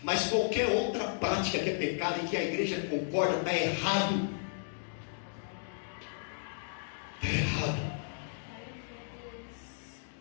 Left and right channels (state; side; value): silent; right; digital silence